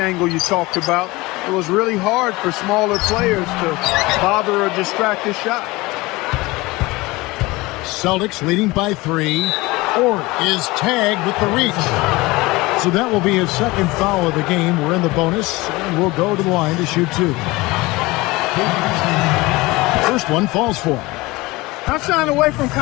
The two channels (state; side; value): quieter; right; 21.7 dB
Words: you talked about. It was really hard for smaller players to bother or distract his shot. Celtics leading by 3. Ford is tagged with the reach. So that will be his second foul of the game. We're in the bonus, and we'll go to the line to shoot 2. First one falls for him. Not shying away from